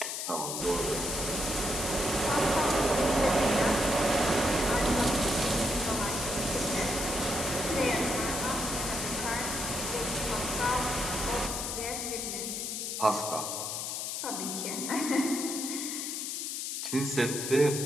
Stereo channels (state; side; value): noise; left; hiss, 3 dB below the sound